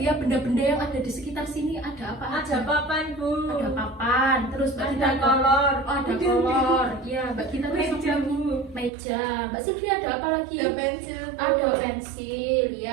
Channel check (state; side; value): drops out; left; at 8.9 s